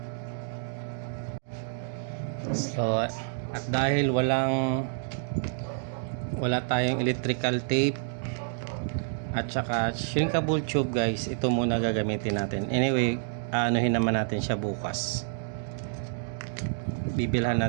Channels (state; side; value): silent; left; digital silence